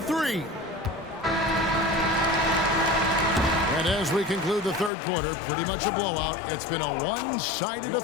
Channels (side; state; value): right; drops out; at 4.9 s